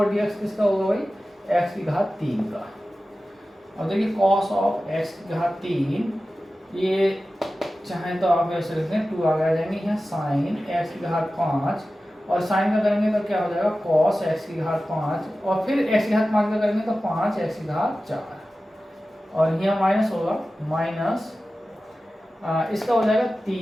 डी एक्स किसका होगा भाई, एक्स की घात 3 का। अब देखिए कॉस ऑफ एक्स की घात 3, ये चाहें तो आप ऐसे लिखते हैं 2 आगे आ जाएंगे यहाँ, साइन एक्स की घात 5, और साइन का करेंगे तो क्या हो जाएगा, कॉस एक्स की घात 5, और फिर एक्स की घात 5 का करेंगे तो 5 एक्स की घात 4, और यहाँ माइनस होगा, माइनस इसका हो जाएगा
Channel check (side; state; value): both; normal; correlation 0.95